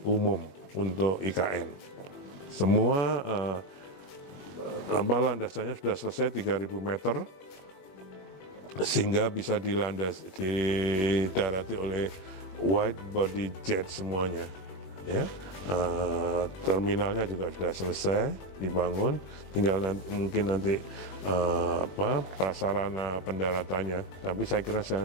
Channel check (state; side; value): late; right; 21 ms